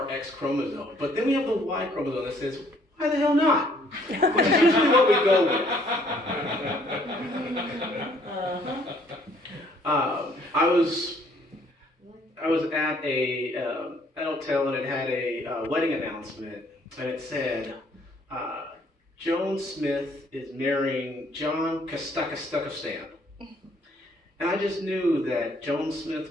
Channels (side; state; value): both; normal; correlation 0.63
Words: X chromosome. But then we have the Y chromosome that says, why the hell not? Which is usually what we go with. I was at a hotel, and it had a wedding announcement, and it said, Joan Smith is marrying John Kastakastakistan. And I just knew that Joan Smith